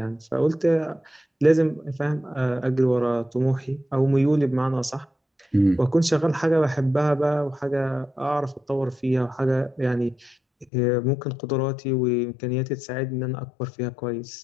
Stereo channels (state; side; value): drops out; right; at 10.7 s